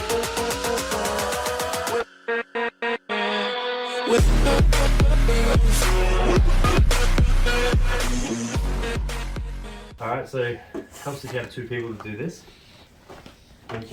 Alright, so it helps if you have two people to do this. You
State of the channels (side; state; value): both; identical; correlation 1.00